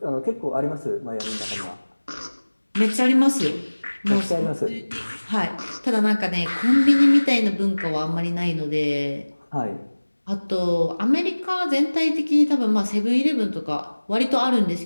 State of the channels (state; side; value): inverted; both; correlation -1.00